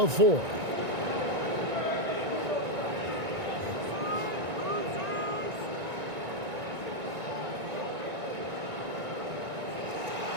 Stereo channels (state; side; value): late; left; 1.9 ms